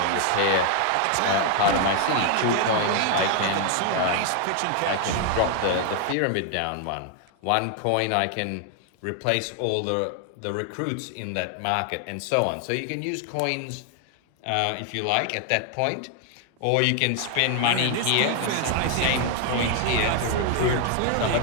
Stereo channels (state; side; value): different; both; correlation 0.00